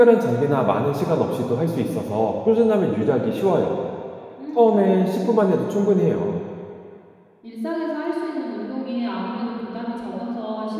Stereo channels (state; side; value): identical; both; correlation 1.00